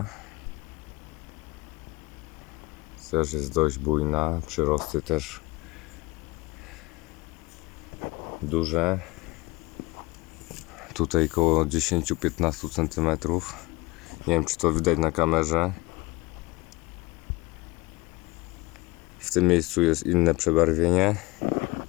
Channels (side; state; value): right; quieter; 22.8 dB